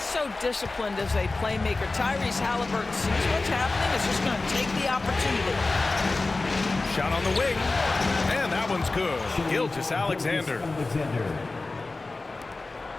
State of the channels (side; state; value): right; quieter; 3.4 dB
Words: so disciplined as a playmaker. Tyrese Halliburton sees what's happening. Is just going to take the opportunity. Shot on the wing. And that one's good. Gilgeous-Alexander.